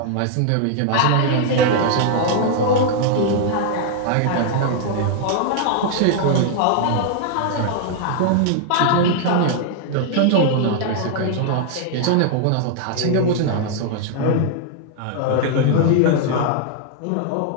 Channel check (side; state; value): both; different; correlation 0.00